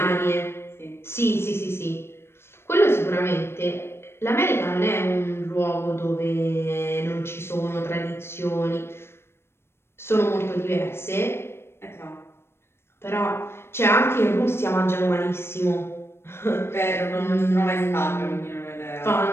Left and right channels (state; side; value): late; right; 0.12 ms